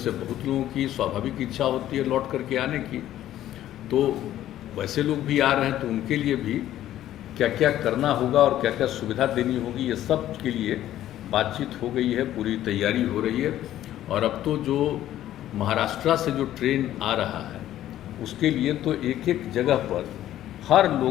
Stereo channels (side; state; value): right; quieter; 12.8 dB